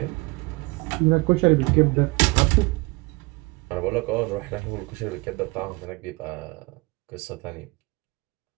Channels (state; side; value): quieter; left; 25.7 dB